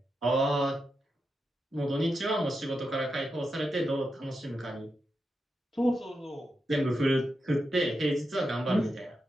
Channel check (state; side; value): normal; both; correlation 0.87